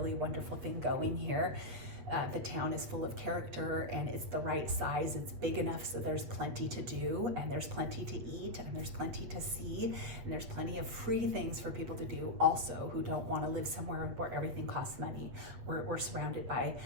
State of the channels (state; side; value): late; left; 8.4 ms